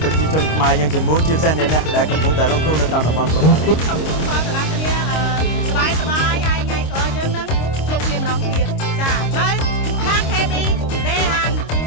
ប្រជាជនខ្មែរយើងទាំងមូលជាពិសេសអ្នកដែលកំពុងតែរងគ្រោះនៅតាមតំបន់ប្រព័ន្ធសូមជូនពរដល់អ្នកគ្នាសប្បាយហើយថ្ងៃក្រោយយើងនឹងជួបគ្នាម្ដងទៀតចានៅខាង KB ដេហាន់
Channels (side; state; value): right; late; 26 ms